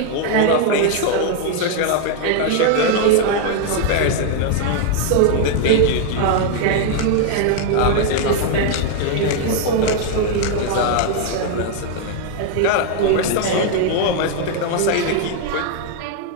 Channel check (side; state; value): both; different; correlation 0.00